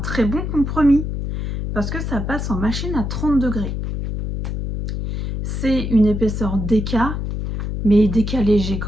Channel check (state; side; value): noise; left; hum, 3 dB below the sound